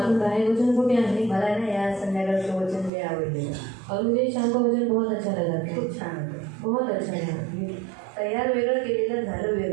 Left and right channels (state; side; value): drops out; left; at 2.9 s